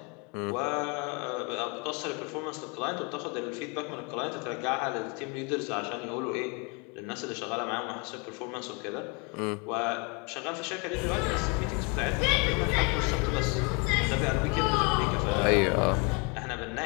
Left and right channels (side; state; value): right; quieter; 32.2 dB